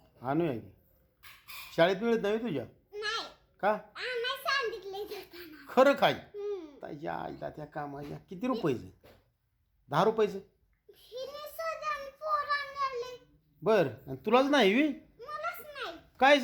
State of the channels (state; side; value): identical; both; correlation 1.00